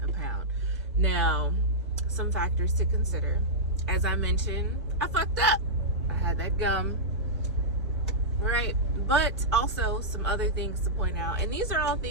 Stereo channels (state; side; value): normal; both; correlation -0.10